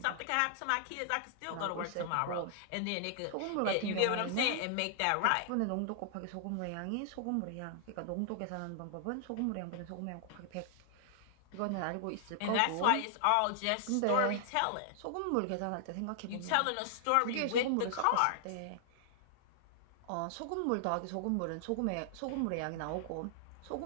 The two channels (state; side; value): different; both; correlation -0.01